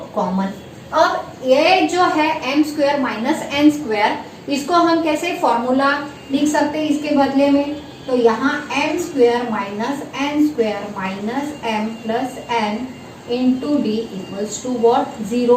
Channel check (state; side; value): identical; both; correlation 1.00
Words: कॉमन। अब ये जो है m square minus n square, इसको हम कैसे फॉर्मूला लिख सकते हैं इसके बदले में, तो यहाँ m square minus n square minus m plus n into D equals to what